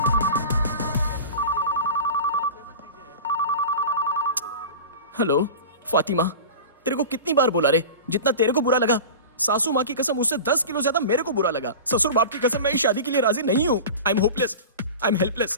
Hello Fatima, तेरे को कितनी बार बोला रे, जितना तेरे को बुरा लगा सासू माँ की कसम उससे 10 किलो ज्यादा मेरे को बुरा लगा। ससुर बाप की कसम मैं इस शादी के लिए राजी नहीं हूँ। I am hopeless, I am helpless,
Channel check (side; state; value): both; inverted; correlation -0.32